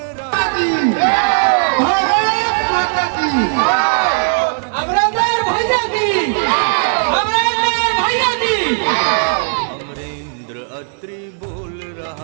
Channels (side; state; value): left; silent; digital silence